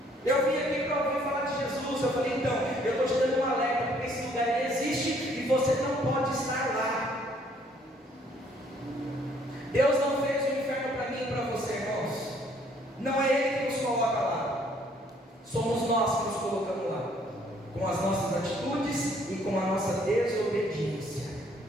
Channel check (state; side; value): normal; both; correlation 0.63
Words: eu vim aqui para ouvir falar de Jesus. Eu falei: então, eu estou te dando um alerta, porque esse lugar existe e você não pode estar lá. Deus não fez o inferno para mim e para você, irmãos. Não é Ele que nos coloca lá, somos nós que nos colocamos lá, com as nossas atitudes e com a nossa desobediência.